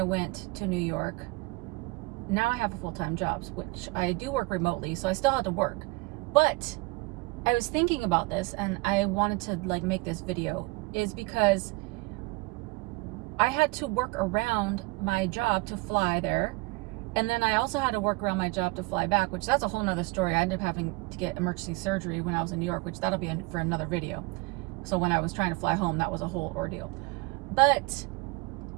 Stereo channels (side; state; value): left; quieter; 24.9 dB